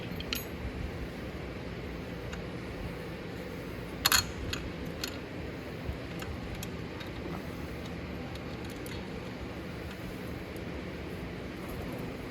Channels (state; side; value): identical; both; correlation 1.00